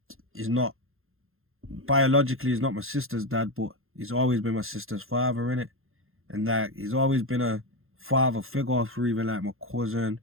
not, biologically he's not my sister's dad, but he's always been my sister's father, innit? And like, he's always been a father figure for even like my cousin,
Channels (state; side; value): late; left; 0.61 ms